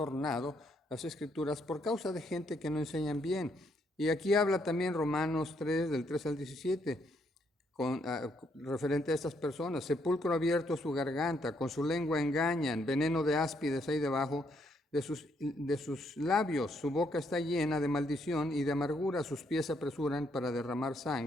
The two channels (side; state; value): both; normal; correlation 0.73